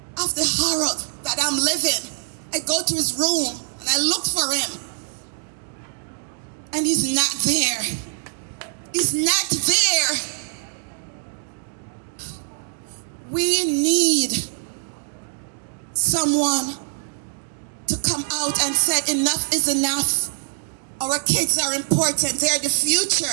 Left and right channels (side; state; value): left; silent; digital silence